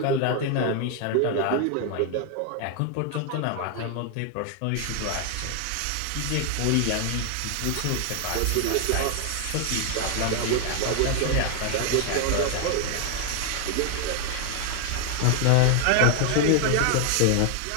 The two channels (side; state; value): both; different; correlation 0.00